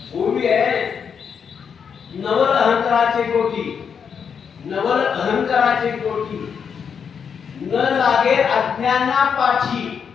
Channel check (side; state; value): right; quieter; 6.9 dB